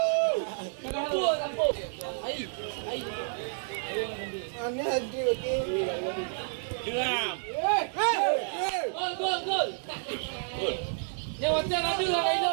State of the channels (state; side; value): silent; left; 58 dB below the other